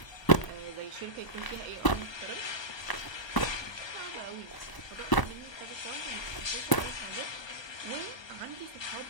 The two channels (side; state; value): right; late; 1.0 ms